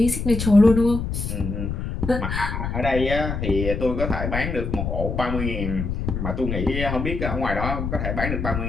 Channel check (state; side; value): noise; left; rumble, 3 dB below the sound